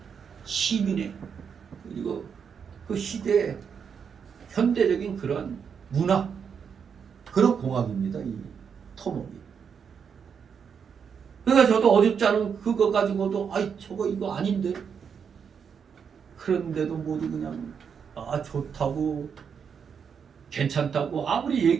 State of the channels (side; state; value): left; quieter; 6.9 dB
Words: 시민의 그리고 그 시대 현대적인 그런 문화 그런 공학입니다. 이 토목이. 그러니까 저도 어줍지 않은 그거 가지고도 저거 이거 아닌데 그런데도 모두 그냥 좋다고 괜찮다고 아무리